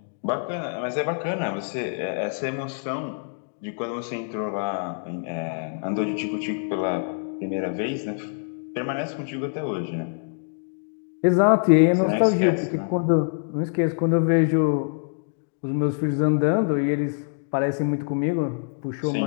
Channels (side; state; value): right; silent; digital silence